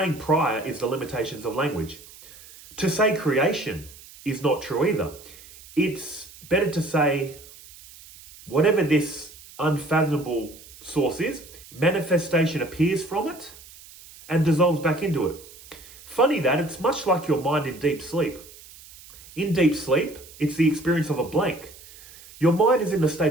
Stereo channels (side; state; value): right; noise; hiss, 20 dB below the sound